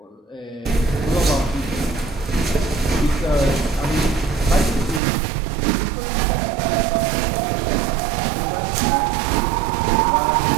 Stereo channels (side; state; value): left; drops out; at 5.0 s